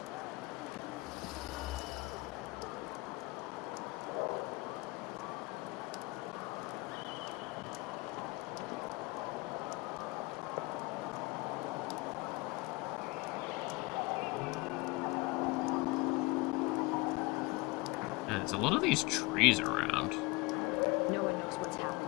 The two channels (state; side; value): quieter; right; 24.1 dB